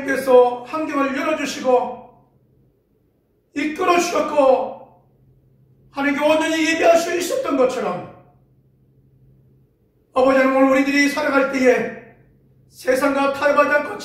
환경을 열어주시고 이끌어 주셨고 하나님께 온전히 예배할 수 있었던 것처럼, 아버지 하나님, 오늘 우리들이 살아갈 때에 세상과 타협하지 않고,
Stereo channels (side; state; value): both; identical; correlation 1.00